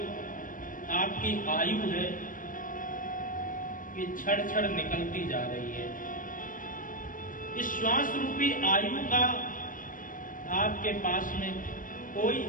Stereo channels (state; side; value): late; right; 0.39 ms